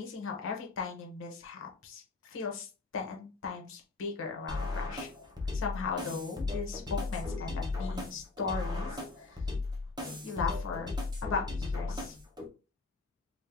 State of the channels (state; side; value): quieter; right; 3.7 dB